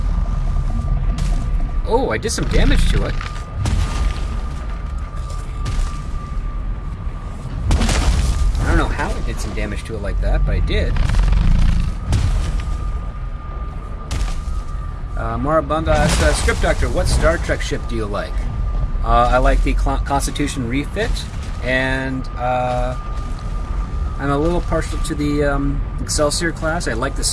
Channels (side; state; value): both; identical; correlation 1.00